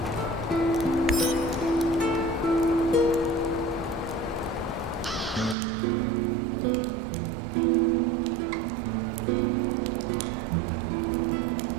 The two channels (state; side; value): drops out; left; at 5.6 s